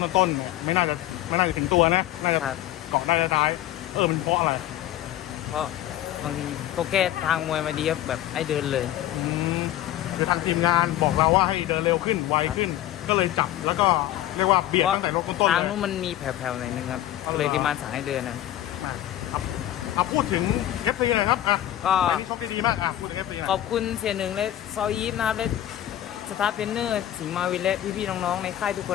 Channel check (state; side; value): quieter; right; 13.0 dB